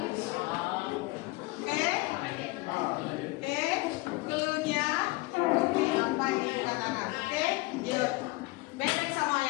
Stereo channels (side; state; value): right; quieter; 22.4 dB